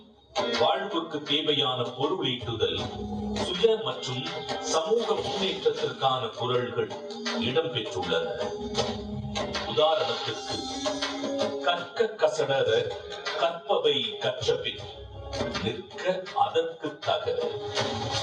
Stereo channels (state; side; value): identical; both; correlation 1.00